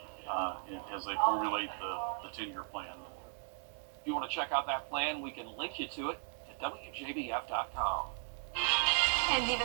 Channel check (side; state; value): left; silent; 53 dB below the other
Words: as they formulate the 10-year plan. If you want to check out that plan, we can link you to it at WJBF.com. And